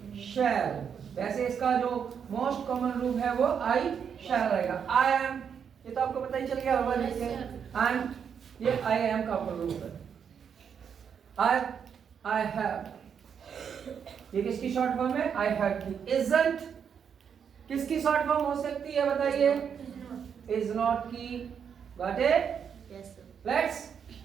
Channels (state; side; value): quieter; left; 7.4 dB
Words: शैल। वैसे इसका जो मोस्ट कॉमन रूप है वो आई शैल रहेगा। आई एम, ये तो आपको पता ही चल गया होगा। एंड ये आई एम का रूप है। आई हैव, ये किसकी शॉर्ट फॉर्म है? आई हैव की। इजंट किसकी शॉर्ट फॉर्म हो सकती है बताइए? इज नॉट की। Got it? Yes, sir.